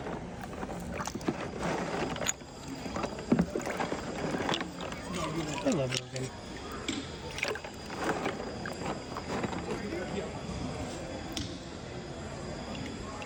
I love Oregon.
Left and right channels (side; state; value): both; identical; correlation 1.00